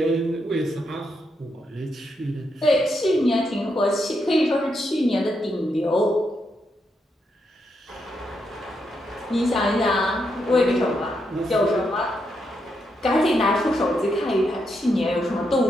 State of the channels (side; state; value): both; normal; correlation 0.81